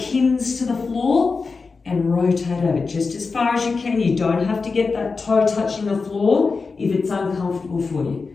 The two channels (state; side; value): quieter; right; 4.5 dB